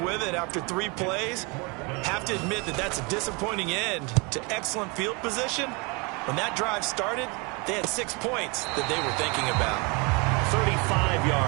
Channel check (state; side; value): quieter; left; 29.3 dB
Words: with it after 3 plays. Have to admit that that's a disappointing end to excellent field position. When that drive started, they had 6 points that they were thinking about. 35